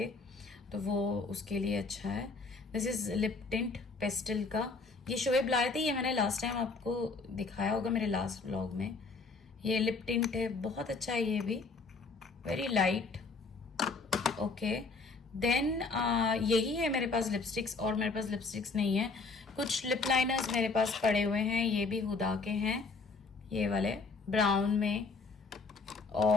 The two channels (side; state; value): right; quieter; 4.1 dB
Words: तो वो उसके लिए अच्छा है। This is lip tint pastel का, ये शोएब लाए थे, ये मैंने लास्ट टाइम आपको दिखाया होगा मेरे लास्ट व्लॉग में। ये लिप टिंट है, बहुत अच्छा है ये भी, वेरी लाइट। ओके, देन यही है मेरे पास लिपस्टिक्स, और मेरे पास लिपस्टिक्स नहीं है। कुछ लिप लाइनर्स मेरे पास पड़े हुए हैं, ये भी हुदा के हैं, ये वाले ब्राउन में